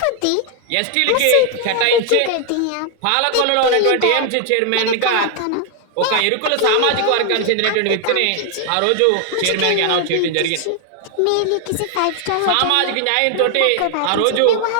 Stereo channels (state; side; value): different; both; correlation 0.00